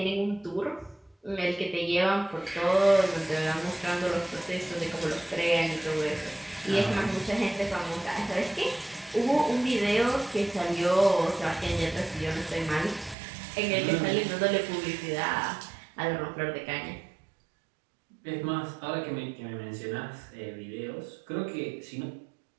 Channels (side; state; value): left; drops out; at 13.2 s